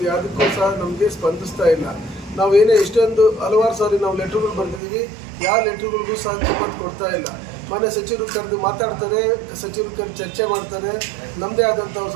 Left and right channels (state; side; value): drops out; left; at 4.8 s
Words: ಯಾವುದಕ್ಕೂ ಸಹ ನಮಗೆ ಸ್ಪಂದಿಸ್ತಾ ಇಲ್ಲ. ನಾವೇನೇ ಎಷ್ಟೊಂದು ಹಲವಾರು ಸಾರಿ ನಾವು ಲೆಟ್ರ್ಗಳು ಬರೆದಿದ್ದೀವಿ, ಯಾವ ಲೆಟ್ರ್ಗಳಿಗೂ ಸಹ ಕಿಮ್ಮತ್ತು ಕೊಡ್ತಾ ಇಲ್ಲ. ಮಾನ್ಯ ಸಚಿವರು ಕರೆದು ಮಾತಾಡ್ತಾರೆ, ಸಚಿವರು ಕರೆದು ಚರ್ಚೆ ಮಾಡ್ತಾರೆ, ನಮ್ಮದೇ ಆದಂಥ